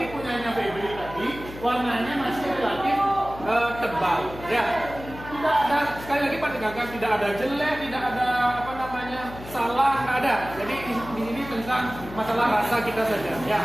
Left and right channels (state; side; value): noise; left; hum, 14 dB below the sound